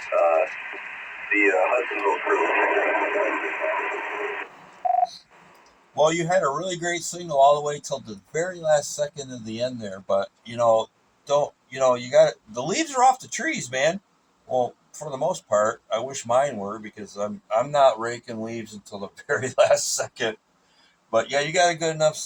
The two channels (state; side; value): identical; both; correlation 1.00